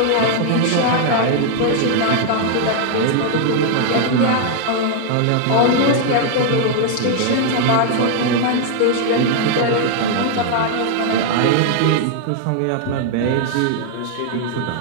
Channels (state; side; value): different; both; correlation 0.00